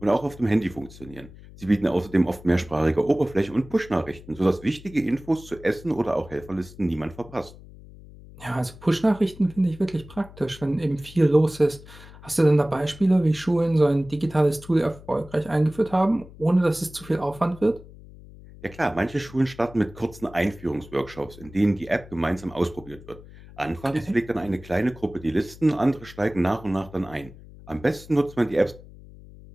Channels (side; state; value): left; noise; hum, 19 dB below the sound